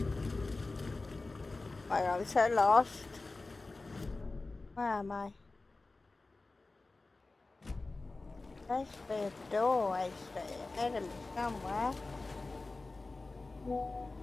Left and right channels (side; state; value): right; quieter; 3.4 dB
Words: I'm so lost. Where am I? There's a doorway straight ahead of me somewhere.